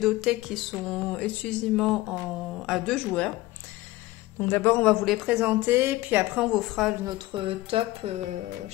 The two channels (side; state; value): right; quieter; 18.3 dB